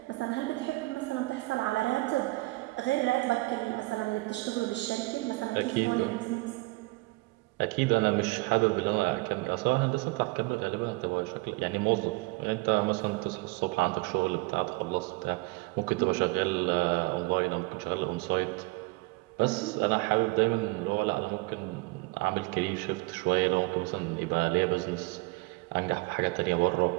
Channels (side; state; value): left; quieter; 23.9 dB